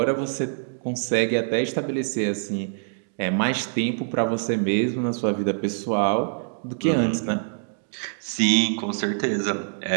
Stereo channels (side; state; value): left; silent; digital silence